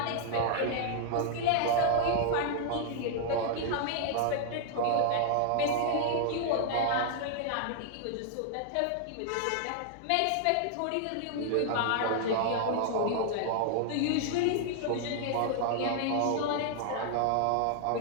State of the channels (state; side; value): different; both; correlation -0.01